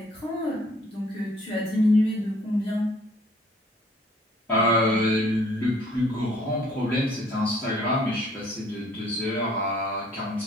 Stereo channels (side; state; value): both; normal; correlation 0.58